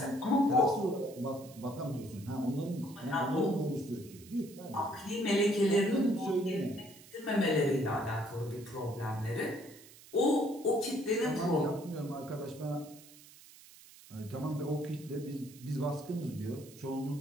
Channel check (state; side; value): noise; right; hiss, 21 dB below the sound